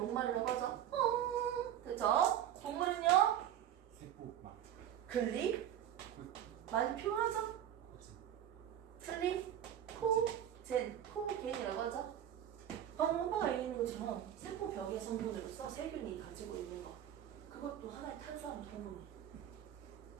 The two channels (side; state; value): left; quieter; 10.7 dB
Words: 하죠. 됐죠? 동물은요? 세포막. 글리. 많이 표현하죠? 코젠이라고 하죠. 방금 오빠가 얘기하는 것처럼 세포벽의 성분으로서 세균이 가지고 있는 것. 그것도 하나의 탄수화물 성분이에요.